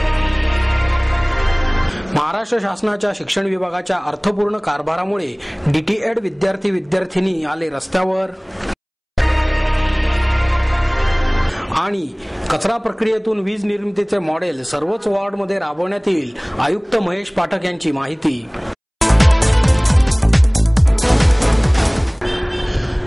महाराष्ट्र शासनाच्या शिक्षण विभागाच्या अर्थपूर्ण कारभारामुळे डीटीएड विद्यार्थी-विद्यार्थिनी आले रस्त्यावर। आणि कचरा प्रक्रियेतून वीज निर्मितीचे मॉडेल सर्वच वॉर्डमध्ये राबवण्यात येईल, आयुक्त महेश पाठक यांची माहिती।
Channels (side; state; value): both; identical; correlation 1.00